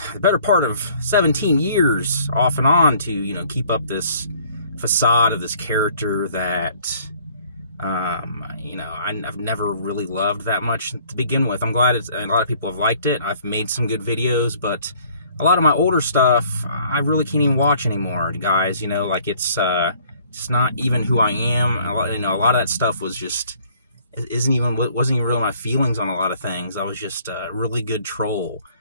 the better part of 17 years off and on to, keep up this facade of this character that, I've never really loved that much to begin with. I'm glad a lot of people have liked it. I've made some good videos, but a lot of my older stuff, I really can't even watch anymore, guys. It's not even who I am. A lot of that stuff was just, wasn't even really my feelings on a lot of things. I was just a really good troll.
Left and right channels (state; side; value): inverted; both; correlation -0.58